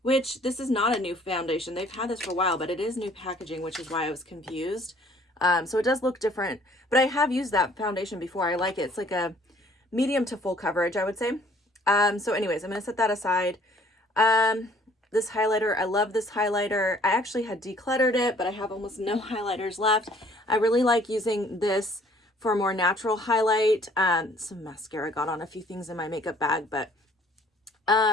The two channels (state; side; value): normal; both; correlation 0.58